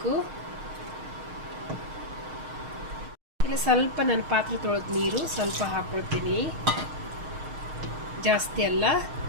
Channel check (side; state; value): left; late; 6.5 ms